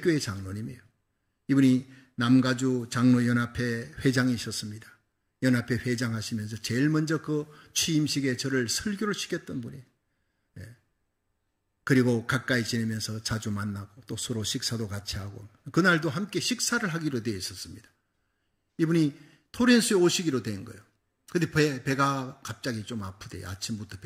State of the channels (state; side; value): identical; both; correlation 1.00